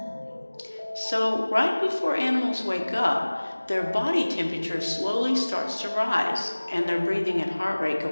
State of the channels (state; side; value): inverted; both; correlation -1.00